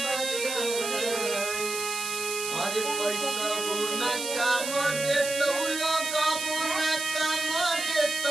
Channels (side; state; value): right; noise; hiss, 5 dB below the sound